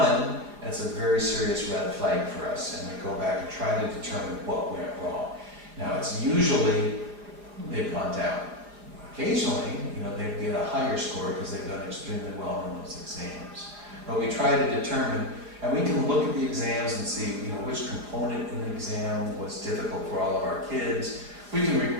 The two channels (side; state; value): left; late; 5.0 ms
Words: that's a very serious red flag for us, and we go back and try to determine what went wrong. Now, it's usually they've gone down. Occasionally, they get a higher score because they've done extremely well on those exams. But we try to determine, and we can look at the exams and see, which component in the exam was difficult for all of our kids. We can